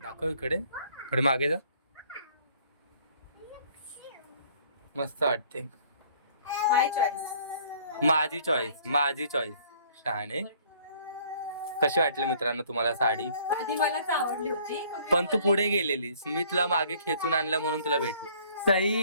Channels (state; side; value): inverted; both; correlation -0.57